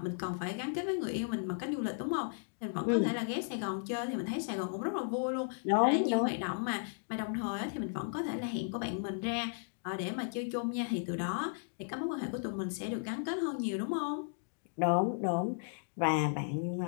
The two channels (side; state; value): right; silent; digital silence